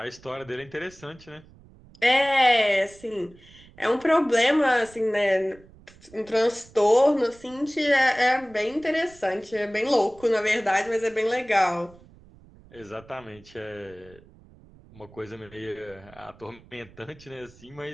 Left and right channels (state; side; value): noise; right; rumble, 24 dB below the sound